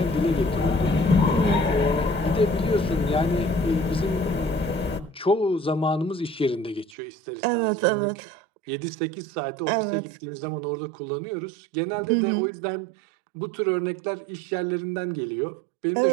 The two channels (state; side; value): drops out; left; at 7.0 s